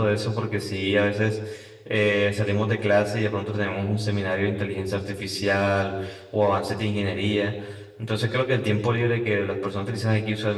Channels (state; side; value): identical; both; correlation 1.00